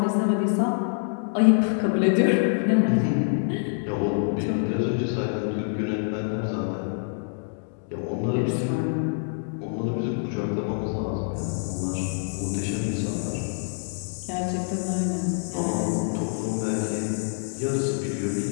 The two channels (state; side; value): silent; right; digital silence